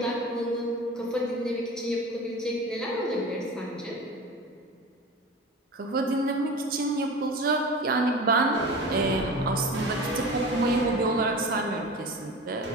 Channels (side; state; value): both; normal; correlation 0.34